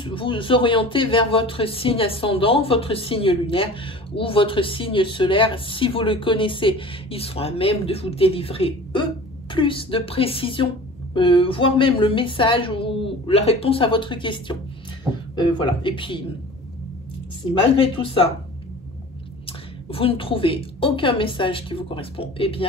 vous orienter vers votre signe ascendant, votre signe lunaire ou votre signe solaire. Si vous le connaissez, ils sont à même de vous délivrer eux plus de précision, voire même le message ou la réponse à votre question. Voilà. Et puis si malgré tout ça vous ne trouvez aucun message qui vous correspond, eh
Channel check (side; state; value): both; normal; correlation 0.40